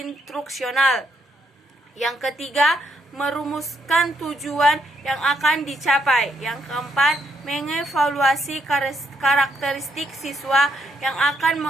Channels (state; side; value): normal; both; correlation 0.75